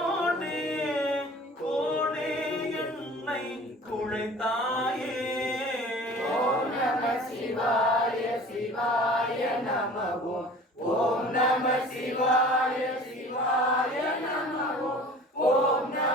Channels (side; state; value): both; normal; correlation 0.44